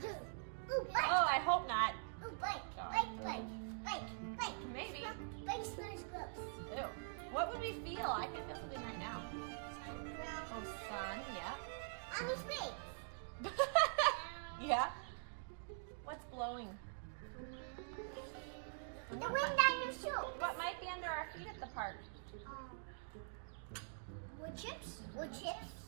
Ooh, bike. Oh, I hope not. Ooh, bike. Bike, bike. Bike, bike. Maybe. Bike smells gross. Ew. What would we feel? I can feel something right now. Ground. Oh, sun, yeah. On his face. Yeah. What's blowing? The wind down your shoe. What might be under our feet at the park? Wood chips. Wood chips.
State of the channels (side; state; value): left; silent; digital silence